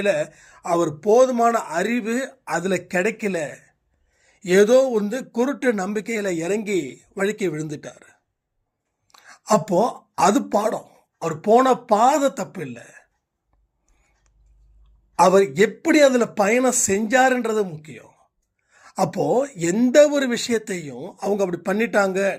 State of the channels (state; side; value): identical; both; correlation 1.00